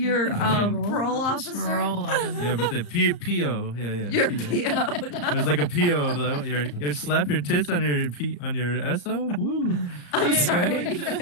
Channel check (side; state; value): right; late; 34 ms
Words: parole officer. Parole officer. Yeah, but the PO, yeah. Your PO. PO. It was like a PO of you slap your tits on your SO. Woo. I'm sorry.